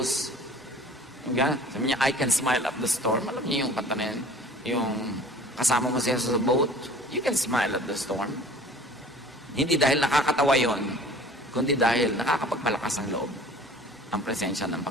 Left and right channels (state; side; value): normal; both; correlation 0.47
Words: sabi niya, I can smile at the storm. Alam niyo yung kanta na yan? Yung kasama mo si Jesus sa boat, you can smile at the storm. Hindi dahil nakakatawa yon, kundi dahil nakakapagpalakas ang loob ang presensya ng